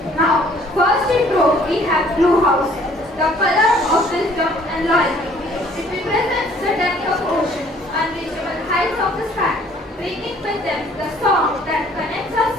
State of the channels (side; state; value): both; normal; correlation 0.58